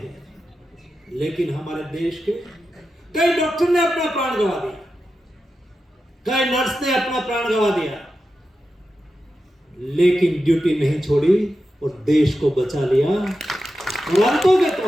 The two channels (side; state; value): both; normal; correlation 0.90